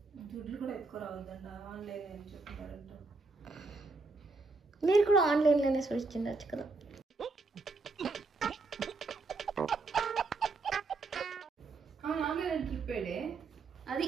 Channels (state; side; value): quieter; left; 3.8 dB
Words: దుడ్లు కూడా ఎత్తుకురావద్దంట. ఆన్లైన్ అని చెప్తున్నారంట. మీరు కూడా ఆన్లైన్లోనే సర్చ్ చేయొచ్చు కదా. ఆన్లైన్ ట్రిప్ అది